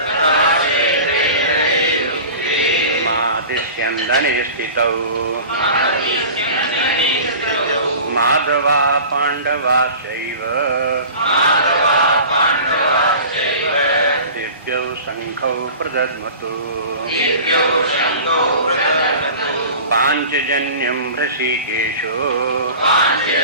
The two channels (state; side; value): inverted; both; correlation -0.38